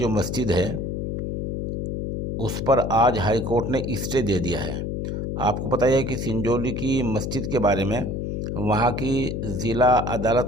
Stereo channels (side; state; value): left; noise; hum, 2 dB below the sound